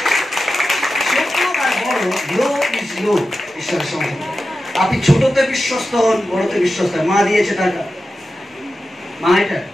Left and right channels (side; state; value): both; normal; correlation 0.92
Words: আপনি ছোটতে বিশ্বস্ত হন, বড়তে বিশ্বস্ত হন। মা দিয়েছে টাকা, মা এটা